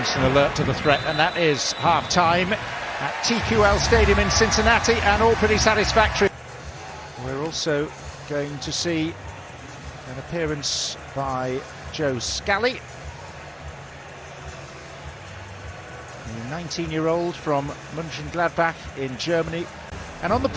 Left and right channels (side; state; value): both; identical; correlation 1.00